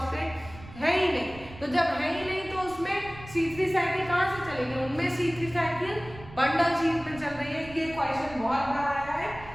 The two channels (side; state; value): right; noise; rumble, 17 dB below the sound